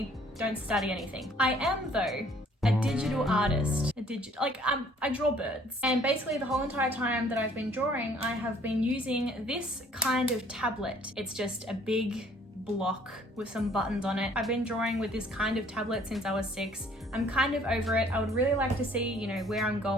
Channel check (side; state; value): both; normal; correlation 0.58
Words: don't study anything. I am though a digital artist. I draw birds. And basically the whole entire time that I've been drawing, I have been using this kind of tablet. It's just a big block with some buttons on it. I've been drawing with this kind of tablet since I was 6. I'm kind of over it. I would really like to see, you know, where I'm